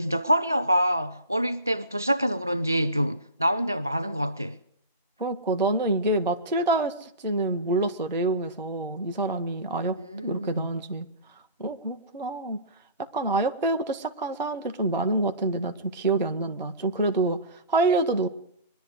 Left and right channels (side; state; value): both; inverted; correlation -0.35